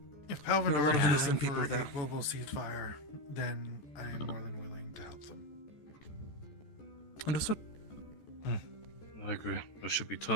If There are a lot Palvindor of is innocent for people a there. global ceasefire, then I am more than willing to help them. Understood. I agree. There should be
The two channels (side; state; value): right; late; 14 ms